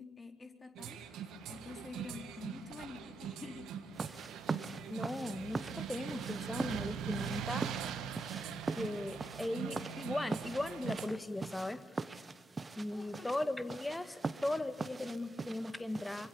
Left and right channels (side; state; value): both; normal; correlation 0.84